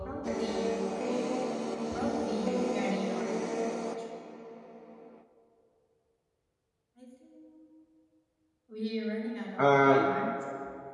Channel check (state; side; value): identical; both; correlation 1.00